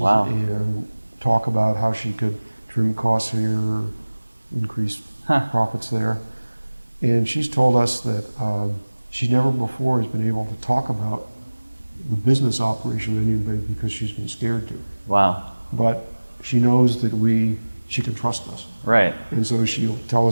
and talk about how she could trim costs here, increase profits there. And she's told us that she never before has been able to talk about the business operation with anybody because she's been scared to. Wow. But she knows that she can trust us. Right. And so she'll tell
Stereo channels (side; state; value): both; inverted; correlation -1.00